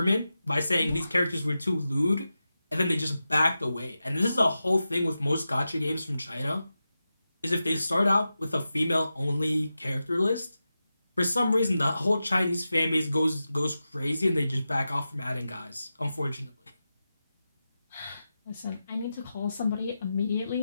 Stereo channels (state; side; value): inverted; both; correlation -0.92